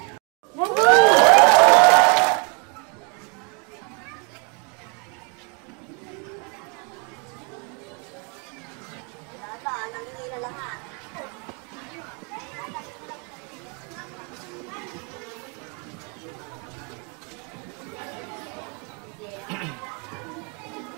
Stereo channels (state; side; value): quieter; left; 34.3 dB